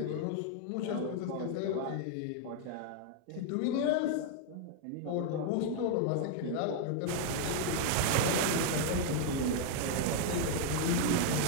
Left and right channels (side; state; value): both; different; correlation 0.00